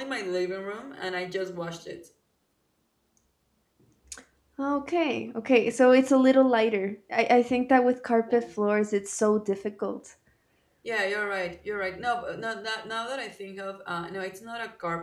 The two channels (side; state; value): both; identical; correlation 1.00